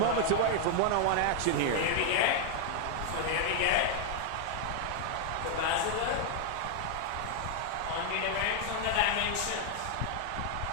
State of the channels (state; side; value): different; both; correlation 0.00